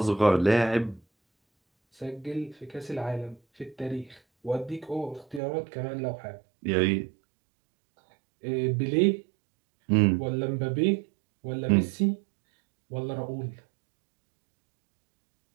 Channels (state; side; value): drops out; left; at 5.4 s